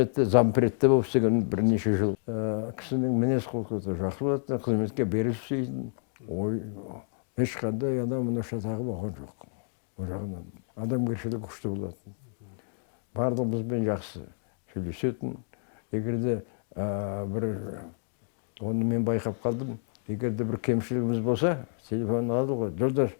зампредте болып істеген бірнеше жыл. Кісінің мінез құлқы жақсы болатын, қызметке берілсейді. Ой, ешқандай мына шатағы болған жоқ. Ол жағынан адамгершілігі күшті болатын. Барлығымызбен жақсы сөйлесетін. Егерде оны мен байқап қалдым. Егерде бір кемшілігіміз болса, телефонын алды ғой, Жолдаш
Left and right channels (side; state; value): right; silent; digital silence